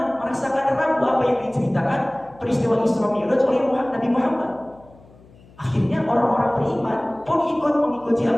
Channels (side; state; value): left; noise; hum, 25 dB below the sound